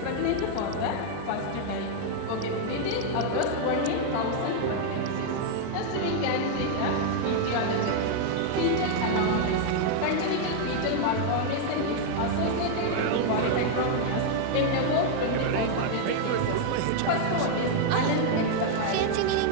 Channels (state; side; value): different; both; correlation 0.00